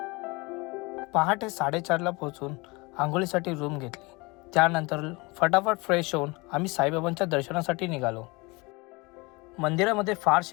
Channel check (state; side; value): quieter; right; 25.8 dB